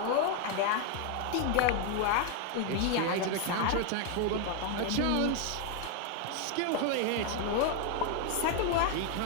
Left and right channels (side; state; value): both; different; correlation 0.01